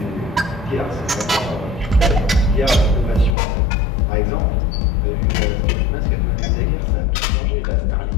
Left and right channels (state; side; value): drops out; right; at 3.4 s